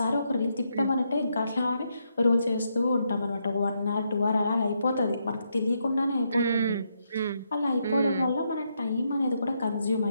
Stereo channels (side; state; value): both; inverted; correlation -0.79